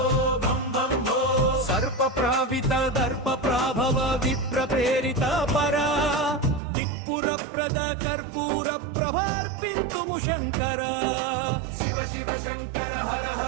సర్ప ప్రావిత దర్ప ప్రాభవ విప్ర ప్రేరిత పరా దిక్పుర ప్రద కర్పూర ప్రభార్పింతుము శంకర శివ శివ శంకర హర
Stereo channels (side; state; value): left; drops out; at 6.6 s